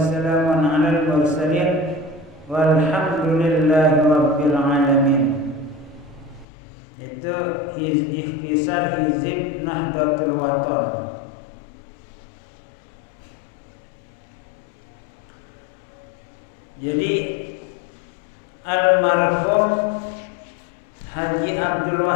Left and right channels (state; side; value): drops out; right; at 6.5 s